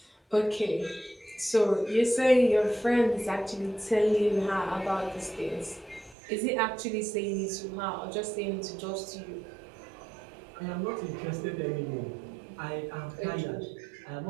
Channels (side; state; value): left; drops out; at 6.2 s